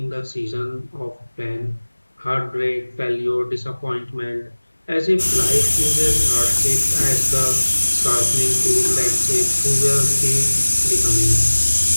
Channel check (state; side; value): inverted; both; correlation -1.00